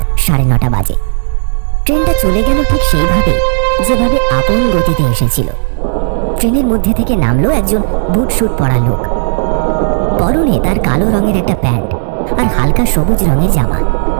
9:30 বাজে। ট্রেনটা চলে গেল ঠিক সেইভাবে যেভাবে আপন গতিতে এসেছিল। ট্রেনের মধ্যে থেকে নামলো একজন বুট শুট পরা লোক। পরনে তার কালো রঙের একটা প্যান্ট আর হালকা সবুজ রঙের জামা,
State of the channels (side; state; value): left; silent; digital silence